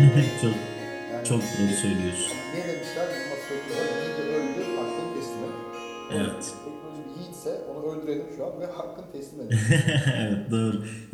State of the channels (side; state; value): both; identical; correlation 1.00